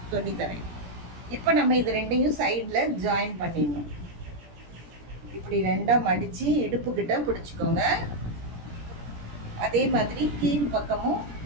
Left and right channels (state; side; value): late; left; 17 ms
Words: சொல்லித்தரேன். இப்போ நம்ம இது ரெண்டையும் சைடில் ஜாயின் பண்ணிடணும். இப்படி ரெண்டாக மடித்து இடுப்புக்கிட்ட பிடிச்சிக்கோங்க. அதே மாதிரி கீழ் பக்கமும்